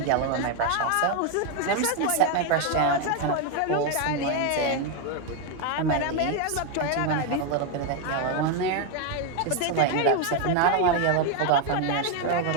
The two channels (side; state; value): both; different; correlation 0.01